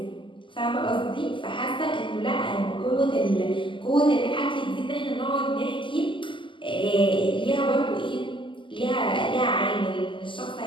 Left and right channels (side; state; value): right; late; 0.24 ms